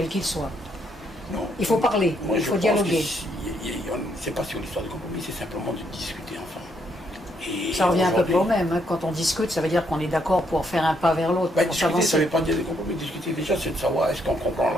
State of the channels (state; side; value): normal; both; correlation 0.73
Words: qu'ils soient? Non. Il faut parler, moi, il faut dialoguer. C'est pas sur l'histoire de compromis, c'est simplement de discuter ensemble. Et ça revient à peu près au même. Hein. Quand on discute, ça veut dire qu'on est d'accord pour faire un pas vers l'autre. Ben, discuter, ça ne veut pas dire des compromis. Discuter déjà, c'est de savoir est-ce qu'on comprend